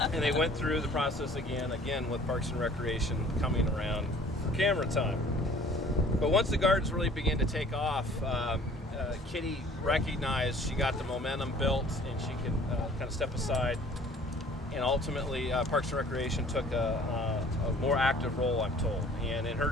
they went through the process again with Parks and Recreation coming around for camera time. But once the gardens really began to take off, Kitty recognized she got the momentum built and she could kind of step aside. And ultimately, Parks and Recreation took a more active role, I'm told. And in her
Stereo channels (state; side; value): normal; both; correlation 0.52